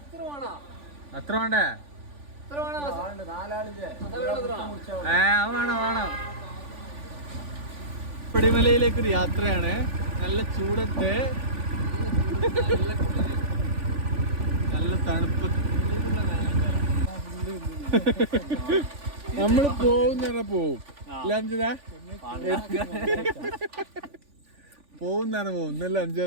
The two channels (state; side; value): late; left; 3.5 ms